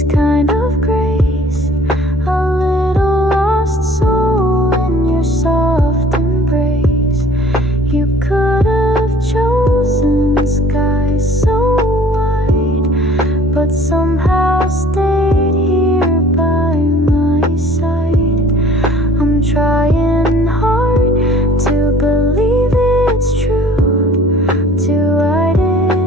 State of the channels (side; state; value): both; normal; correlation 0.52